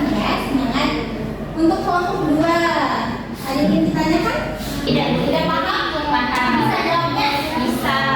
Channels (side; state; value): both; identical; correlation 1.00